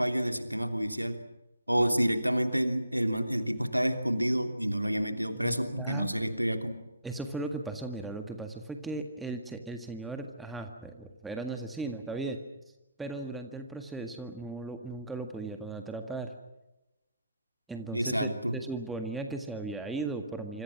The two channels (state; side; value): inverted; both; correlation -0.70